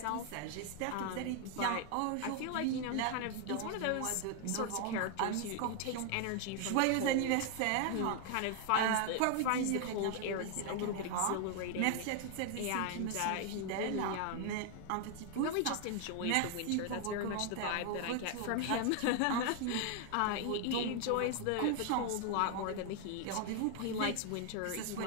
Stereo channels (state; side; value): different; both; correlation 0.00